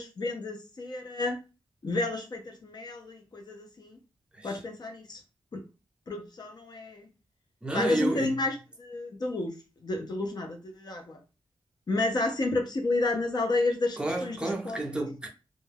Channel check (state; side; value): normal; both; correlation 0.73